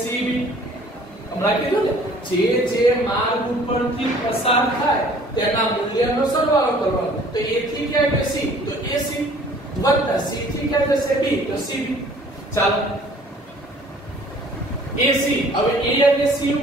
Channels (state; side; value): normal; both; correlation 0.53